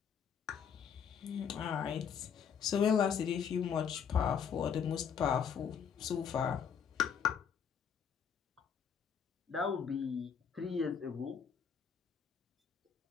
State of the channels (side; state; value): right; quieter; 7.2 dB